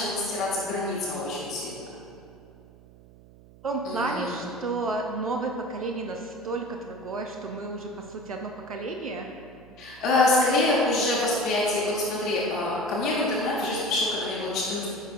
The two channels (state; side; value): noise; right; hum, 22 dB below the sound